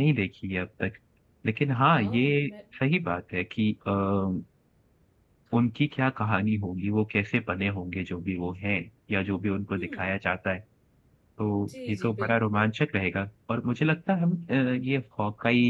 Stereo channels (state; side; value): identical; both; correlation 1.00